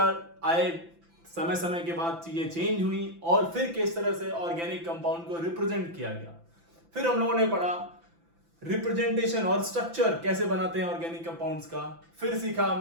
आए, समय समय के बाद चीजें चेंज हुई और फिर किस तरह से ऑर्गेनिक कंपाउंड को रिप्रेजेंट किया गया। फिर हम लोगों ने पढ़ा रिप्रेजेंटेशन और स्ट्रक्चर कैसे बनाते हैं ऑर्गेनिक कंपाउंड्स का। फिर सीखा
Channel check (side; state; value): left; late; 5.9 ms